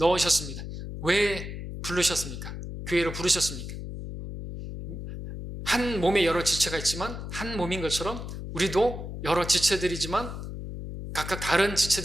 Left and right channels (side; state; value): left; noise; hum, 8 dB below the sound